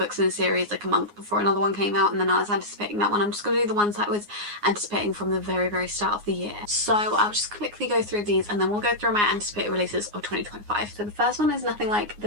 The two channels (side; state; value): left; late; 9.6 ms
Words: in the series like a month before another one came out and then I was anticipating that one. I'm just going to do the ones that I was anticipating from the very start of the year. So I'll just quickly go through these and then we'll go through my anticipated releases of 2025. So the first one is Nothing Like